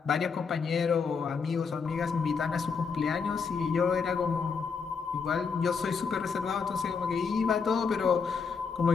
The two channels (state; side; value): quieter; right; 5.5 dB